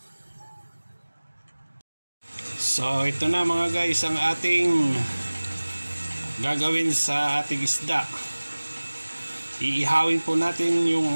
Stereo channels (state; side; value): inverted; both; correlation -1.00